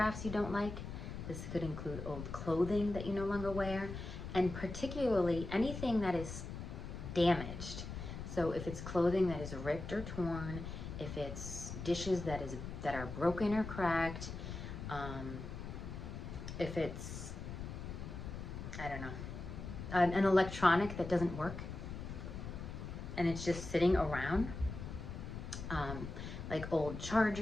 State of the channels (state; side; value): noise; left; rumble, 8 dB below the sound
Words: you don't like. This could include old clothing that you no longer wear. And particularly anything that is damaged. So if it's clothing that is ripped or torn, if it's dishes that are broken or cracked, if it's, I don't know, an electronic that doesn't work and it's just sitting around, like old